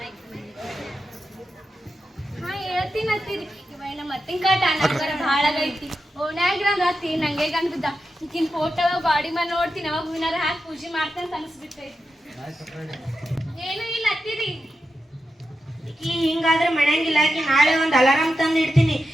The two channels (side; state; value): both; normal; correlation 0.89